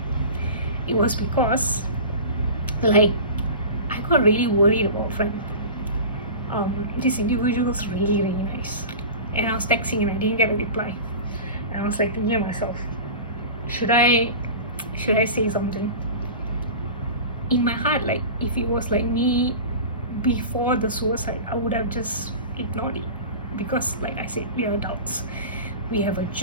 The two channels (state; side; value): inverted; both; correlation -0.34